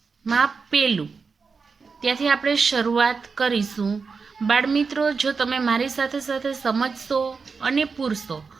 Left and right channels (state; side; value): quieter; left; 5.0 dB